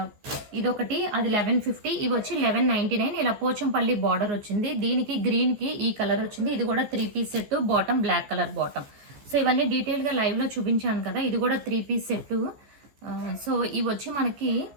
ఇదొకటి, అది 1150. ఇవి వచ్చి 1199. ఇలా పోచంపల్లి బార్డర్ వచ్చింది. దీనికి గ్రీన్కి ఈ కలర్ వచ్చింది. ఇది కూడా 3 piece set, bottom black colour bottom. So ఇవన్నీ డీటెయిల్గా లైవ్లో చూపించాను కదా. ఇది కూడా 3 పీస్ సెట్. సో ఇవి వచ్చి మనకి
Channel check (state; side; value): late; left; 14 ms